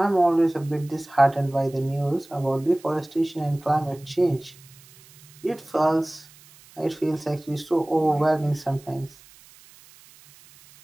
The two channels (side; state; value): right; noise; hiss, 24 dB below the sound